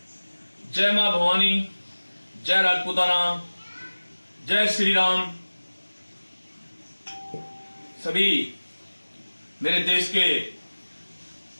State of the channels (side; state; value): both; inverted; correlation -1.00